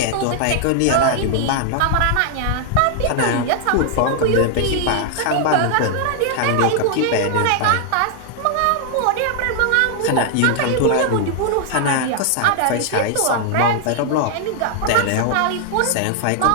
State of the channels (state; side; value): different; both; correlation 0.00